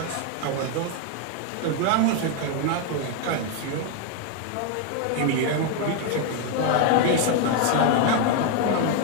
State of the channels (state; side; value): different; both; correlation 0.01